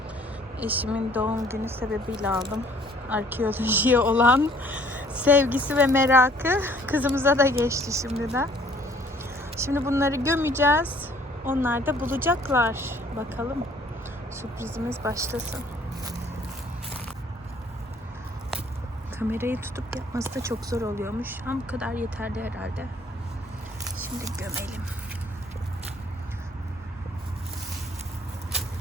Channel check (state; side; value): normal; both; correlation 0.58